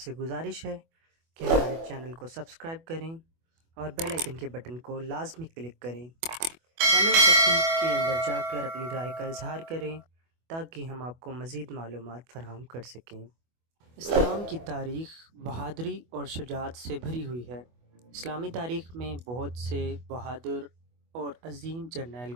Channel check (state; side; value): late; left; 24 ms